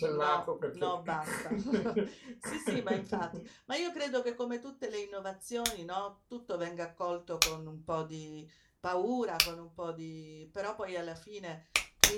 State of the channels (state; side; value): identical; both; correlation 1.00